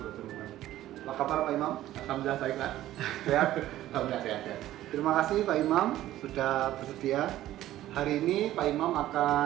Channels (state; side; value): quieter; left; 14.1 dB